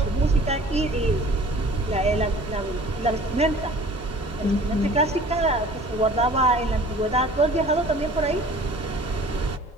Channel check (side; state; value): both; normal; correlation 0.47